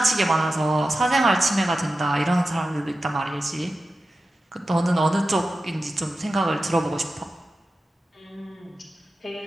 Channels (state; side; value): normal; both; correlation 0.93